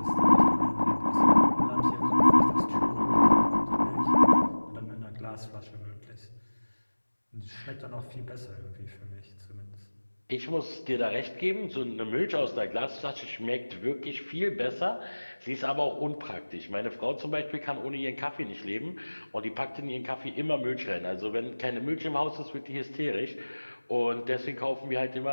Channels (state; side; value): inverted; both; correlation -1.00